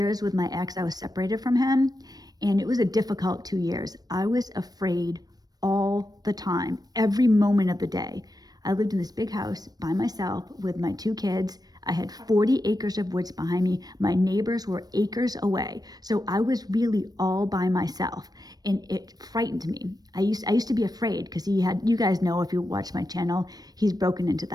with my ex, I was separated from him, and it was a difficult 2 years. I was afraid all the time, every moment of the day. I lived in this big house by myself with my 2 kids. I had 40 acres of woods behind me. My neighbors were acres away. So I was really all by myself, and it frightened me. I used to be afraid because you guys know if you watch my channel, he's broken into the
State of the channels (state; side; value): late; left; 0.19 ms